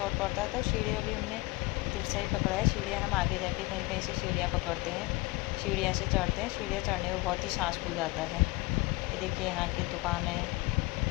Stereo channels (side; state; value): right; quieter; 22.6 dB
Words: पड़ता है, तो सीढ़ियाँ भी हमने तिरछा ही पकड़ा है। सीढ़ियाँ हम आगे जाके कहीं कहीं से सीढ़ियाँ पकड़ते हैं, सीढ़ियाँ से चढ़ते हैं। सीढ़ियाँ चढ़ने में बहुत ही सांस फूल जाता है। ये देखिए यहाँ की दुकानें,